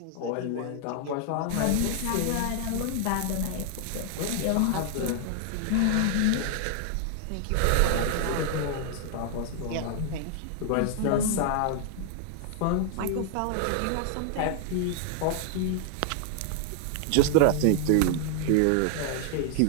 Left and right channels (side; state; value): both; different; correlation 0.00